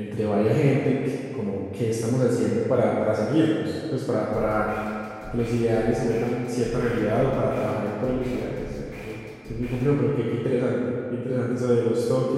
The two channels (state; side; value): identical; both; correlation 1.00